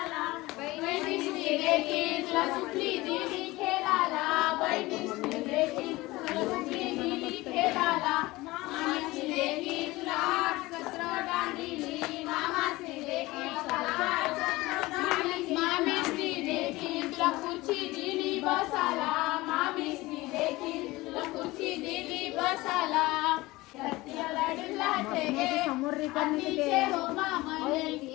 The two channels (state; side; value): quieter; right; 20.2 dB